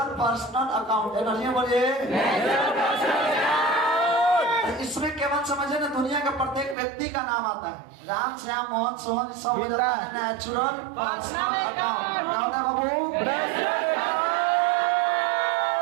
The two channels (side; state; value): left; drops out; at 6.8 s